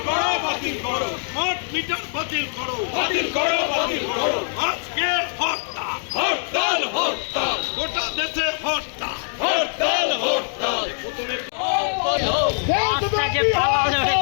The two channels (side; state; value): right; silent; 64 dB below the other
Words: করো, বাতিল করো। স্মার্ট মিটার বাতিল করো, বাতিল করো, বাতিল করো। আজকে হরতাল, হরতাল, হরতাল, গোটা দেশে হরতাল, হরতাল, হরতাল।